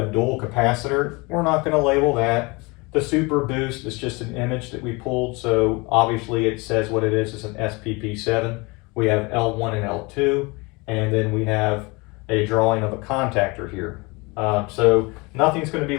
dual capacitor. We're not going to label that. The Super Boost is just an image that we pulled, so obviously it says what it is. It's an SPP7. We have L1 and L2, and then we have a drawing of a contactor here. So nothing's going to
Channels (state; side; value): quieter; right; 26.4 dB